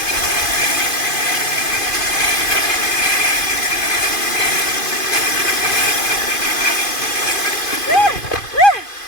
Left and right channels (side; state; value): right; late; 2.5 ms